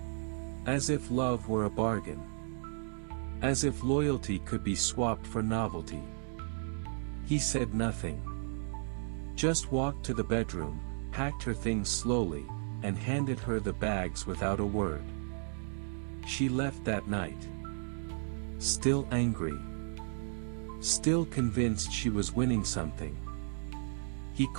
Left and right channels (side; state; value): left; silent; digital silence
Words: As if love were a bargain. As if loyalty could be swapped for novelty. He said nothing. Just walked to the bedroom, packed her things slowly, and handed her the bags without a word. She left that night. Still angry. Still convinced she was winning something. He